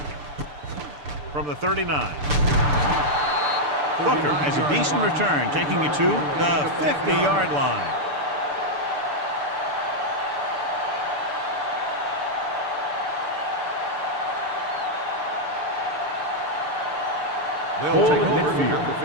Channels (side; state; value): left; late; 6.8 ms